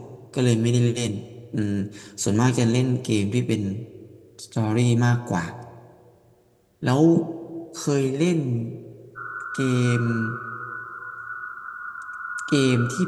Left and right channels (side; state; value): both; identical; correlation 1.00